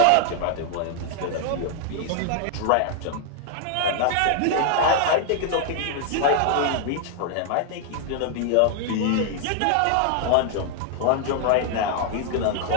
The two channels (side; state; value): both; different; correlation 0.00